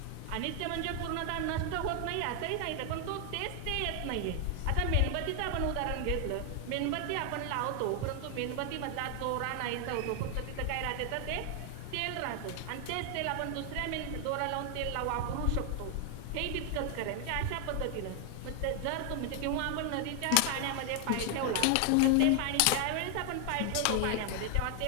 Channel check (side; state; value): both; different; correlation 0.00